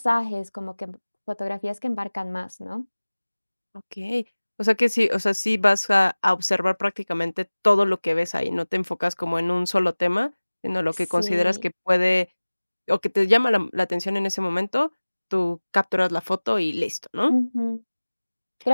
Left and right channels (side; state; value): both; inverted; correlation -1.00